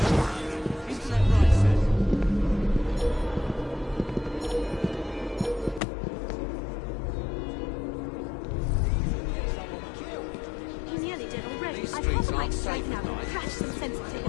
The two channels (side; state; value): right; drops out; at 5.8 s